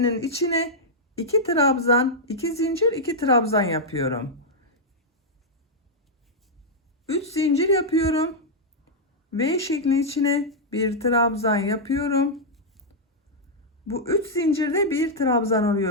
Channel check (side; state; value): both; normal; correlation -0.06